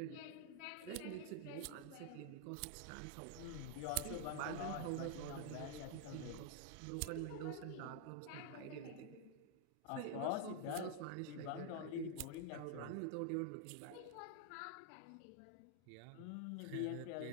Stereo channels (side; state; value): both; different; correlation 0.00